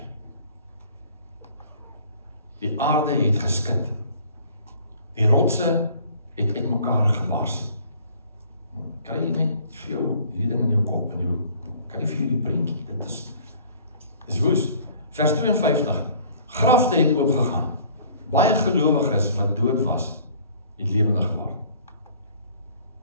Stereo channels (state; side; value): inverted; both; correlation -0.53